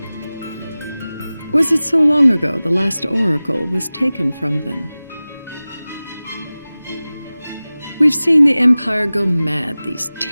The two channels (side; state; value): both; inverted; correlation -0.98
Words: Was it so long ago the last oracle was taken from them? We've seen the Empire go mad these